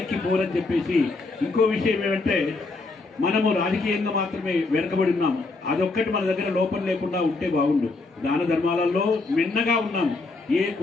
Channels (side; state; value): right; quieter; 3.6 dB